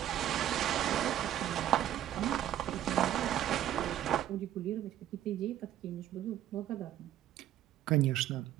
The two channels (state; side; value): quieter; left; 11.8 dB